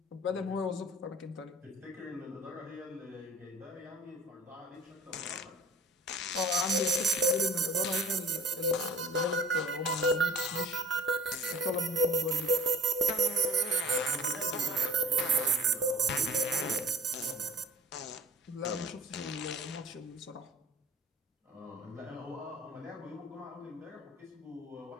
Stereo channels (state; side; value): normal; both; correlation 0.41